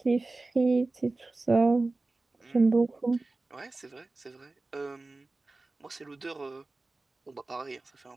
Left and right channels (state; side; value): quieter; left; 3.3 dB